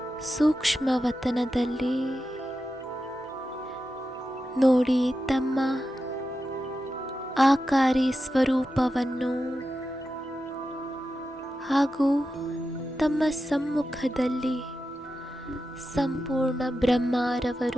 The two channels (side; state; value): both; normal; correlation 0.90